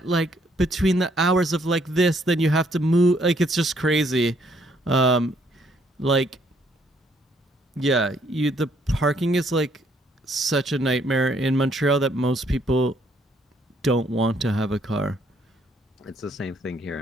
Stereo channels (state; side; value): normal; both; correlation 0.68